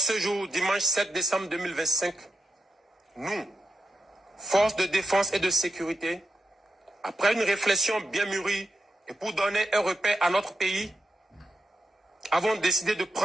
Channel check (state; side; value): normal; both; correlation 0.87